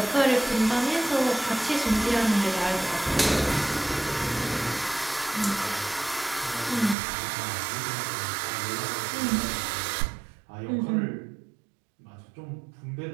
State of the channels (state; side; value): drops out; left; at 7.0 s